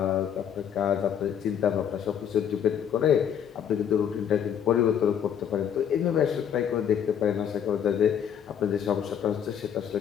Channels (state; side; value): quieter; right; 8.7 dB